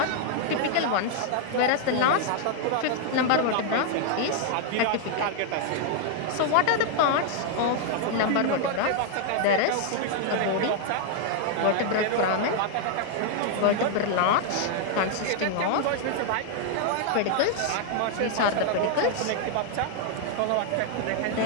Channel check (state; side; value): different; both; correlation 0.00